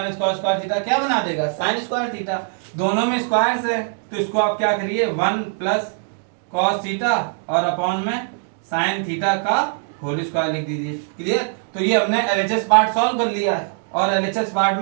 cos स्क्वायर थीटा क्या बना देगा साइन स्क्वायर थीटा, दोनों में स्क्वायर्स है, तो इसको आप क्या करिए 1 प्लस cos थीटा और अपॉन में साइन थीटा का होल स्क्वायर लिख दीजिए। क्लियर, तो ये हमने एलएचएस पार्ट सॉल्व कर लिया है, और एलएचएस पार्ट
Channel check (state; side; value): silent; left; 65 dB below the other